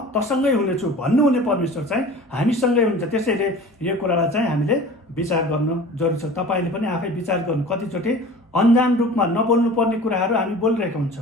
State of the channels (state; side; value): normal; both; correlation 0.41